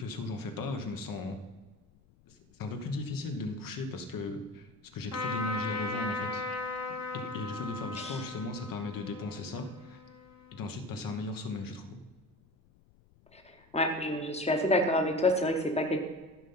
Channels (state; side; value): noise; left; rumble, 29 dB below the sound